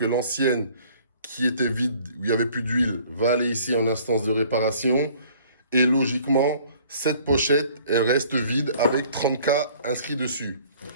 l'ancienne qui était vide, où il n'y avait plus d'huile, va aller ici en instance de réparation. Et logiquement, cette pochette, elle reste vide avec 30K inscrit dessus.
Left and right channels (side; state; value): both; inverted; correlation -0.55